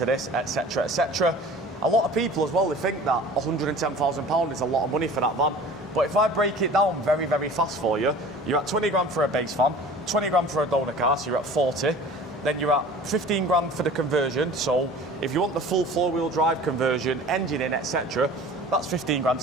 this, etc., etc. A lot of people as well, they think that £110,000 is a lot of money for that van. But if I break it down very, very fast for you, you're at 20 grand for a base van, 20 grand for a donor car, so you're at 40. Then you're at 15 grand for the conversion. So if you want the full four-wheel drive conversion, engine in, etc., that's 15 grand,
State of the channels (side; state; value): left; noise; hum, 25 dB below the sound